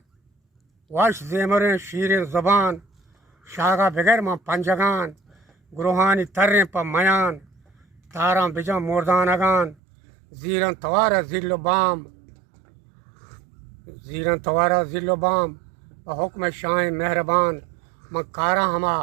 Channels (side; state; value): left; drops out; at 9.8 s